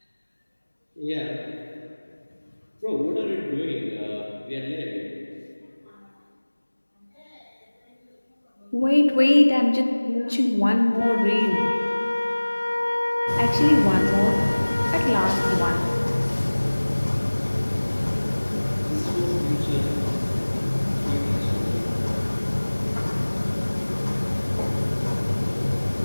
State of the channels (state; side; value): inverted; both; correlation -1.00